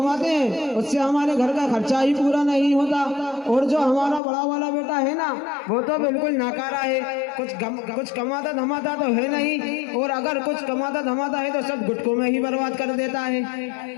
हैं उससे हमारे घर का खर्चा ही पूरा नहीं होता। और जो हमारा बड़ा वाला बेटा है ना, वो तो बिल्कुल नाकारा है। कुछ कमाता धमाता तो है नहीं, और अगर कुछ कमाता धमाता है तो सब गुटकों में ही बर्बाद कर देता है।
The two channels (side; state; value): right; drops out; at 4.2 s